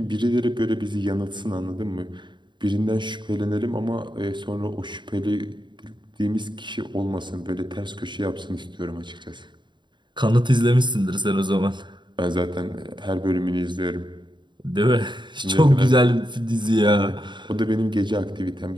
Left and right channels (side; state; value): left; late; 0.22 ms